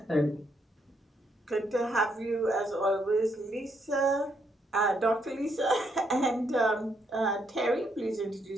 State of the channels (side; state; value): both; normal; correlation 0.75